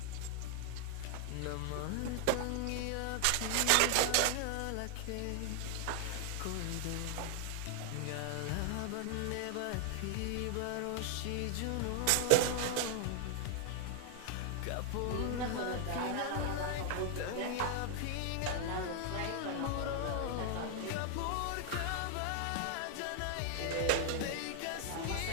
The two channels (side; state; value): both; different; correlation 0.00